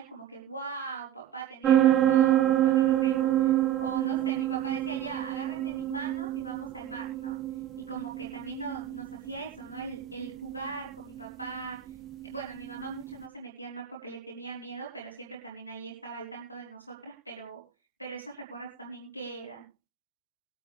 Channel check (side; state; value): left; quieter; 10.8 dB